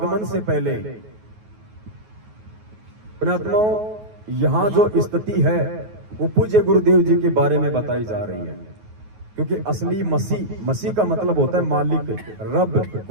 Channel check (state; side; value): late; left; 9.4 ms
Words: से पहले पुण्यात्माओं यहां जो स्थिति है वो पूज्य गुरुदेव जी के बारे में बताई जा रही है। क्योंकि असली मसीह का मतलब होता है मालिक, रब,